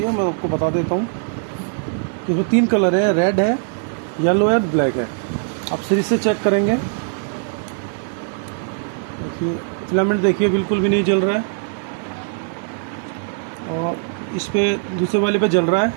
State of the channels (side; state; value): left; silent; 62 dB below the other